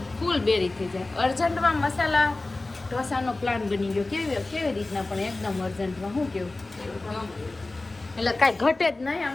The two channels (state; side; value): quieter; right; 3.1 dB